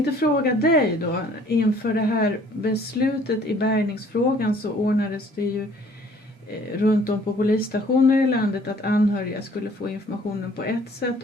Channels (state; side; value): normal; both; correlation 0.56